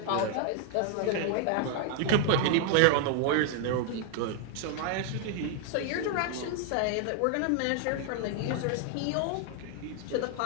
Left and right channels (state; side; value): different; both; correlation 0.00